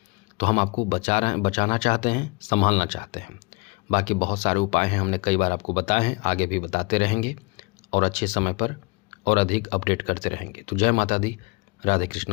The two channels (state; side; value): quieter; right; 27.7 dB